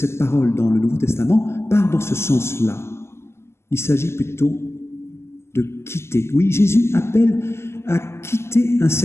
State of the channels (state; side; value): late; right; 0.13 ms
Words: parole dans le Nouveau Testament partent dans ce sens-là. Il s'agit plutôt de quitter. Oui, Jésus appelle à quitter un